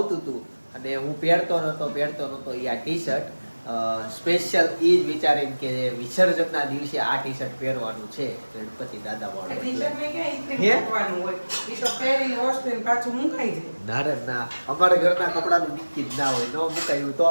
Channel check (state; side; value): inverted; both; correlation -1.00